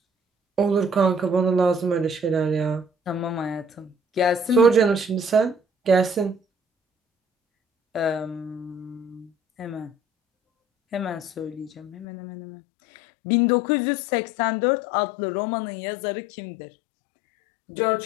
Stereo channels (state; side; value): drops out; right; at 12.1 s